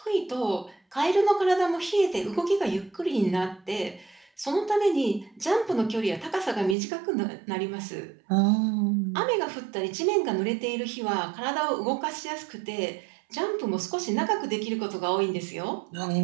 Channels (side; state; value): left; drops out; at 6.8 s